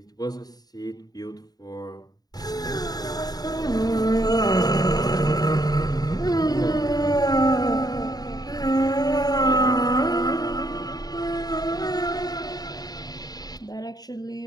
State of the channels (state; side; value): late; right; 0.19 ms